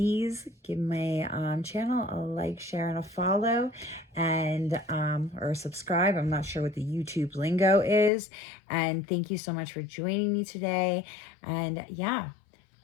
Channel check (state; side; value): drops out; right; at 8.1 s